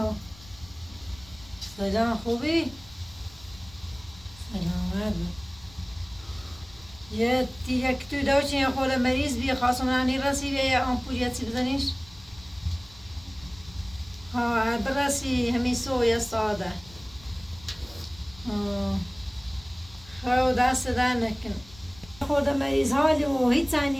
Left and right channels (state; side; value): noise; left; rumble, 21 dB below the sound